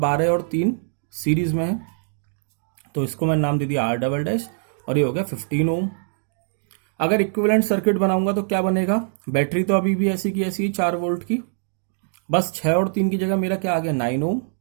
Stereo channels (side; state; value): left; silent; digital silence